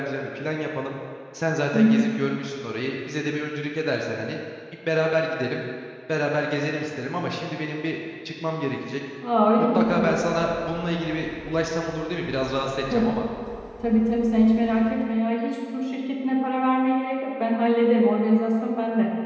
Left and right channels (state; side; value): identical; both; correlation 1.00